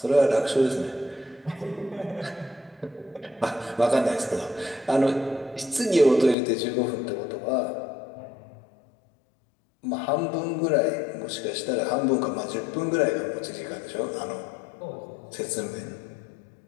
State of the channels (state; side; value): drops out; right; at 6.4 s